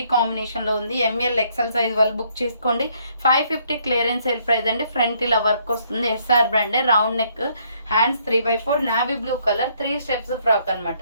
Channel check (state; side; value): inverted; both; correlation -0.68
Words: కాంబినేషన్లో ఉంది. ఎంఎల్ ఎక్సెల్ సైజ్ వాళ్ళు బుక్ చేసుకోండి. 550 క్లియరెన్స్ సేల్ ప్రైస్ అండి. ఫ్రంట్ ఇలా వర్క్ వస్తుంది, ఎస్ఆర్ బ్రాండే, round neck, hands 3/4, navy blue colour, 3 steps frock